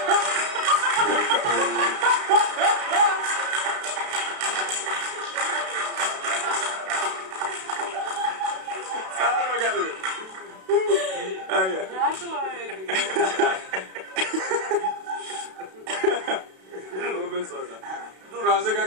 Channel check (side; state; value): left; late; 32 ms